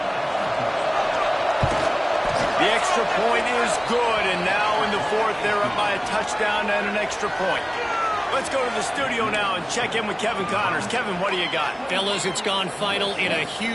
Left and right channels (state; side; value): identical; both; correlation 1.00